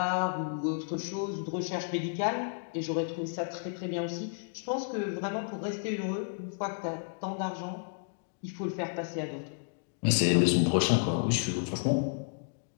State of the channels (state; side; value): silent; right; digital silence